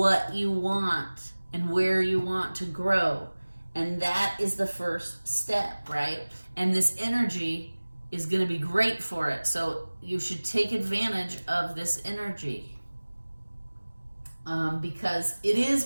you want and where you want to grow. And that is the first step, right? And this energy is going to be great for it. So you should take advantage of this energy. Because it is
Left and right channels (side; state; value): both; inverted; correlation -1.00